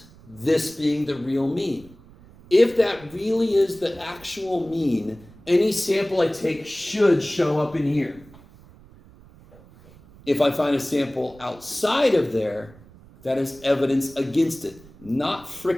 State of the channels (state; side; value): noise; right; rumble, 23 dB below the sound